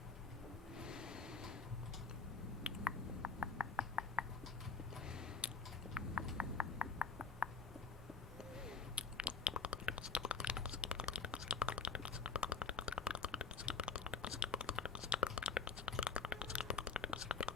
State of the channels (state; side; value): quieter; right; 4.8 dB